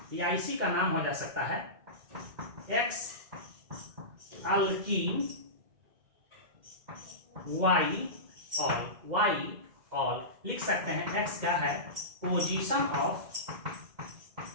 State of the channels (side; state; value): left; late; 2.1 ms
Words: या इसी का नाम हो जा सकता है X अल्कीन Y ऑल लिख सकते हैं। X क्या है, position of